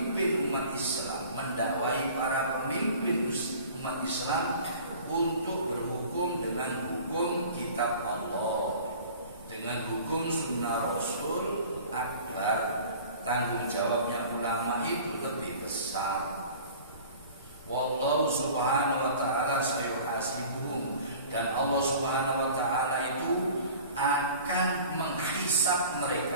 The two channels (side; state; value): both; inverted; correlation -0.44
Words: umat Islam, mendakwai para pemimpin umat Islam untuk berhukum dengan hukum kitab Allah, dengan hukum sunnah Rasul akbar. Tanggung jawabnya ulama itu lebih besar. Wallahu subhanahu wa ta'ala sayuhasibuhum. Dan Allah subhanahu wa ta'ala itu akan menghisab